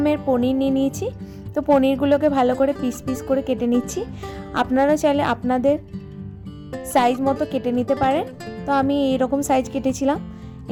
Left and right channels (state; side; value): identical; both; correlation 1.00